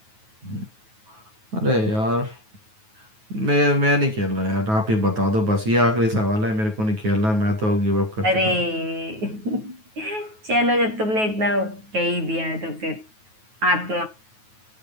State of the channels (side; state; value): left; late; 9.3 ms